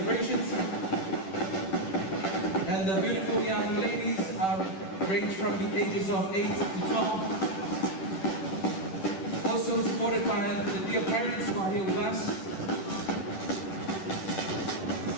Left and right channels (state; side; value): late; right; 10 ms